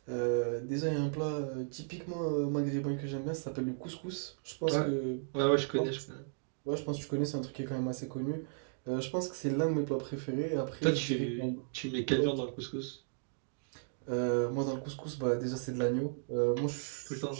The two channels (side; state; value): left; silent; digital silence